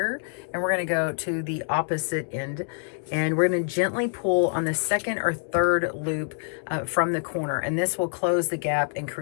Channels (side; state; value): right; silent; digital silence